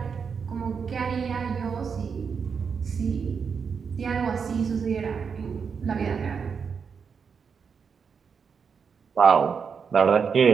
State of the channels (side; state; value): left; quieter; 6.1 dB